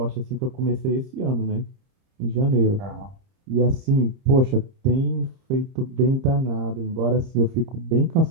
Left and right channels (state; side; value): late; left; 30 ms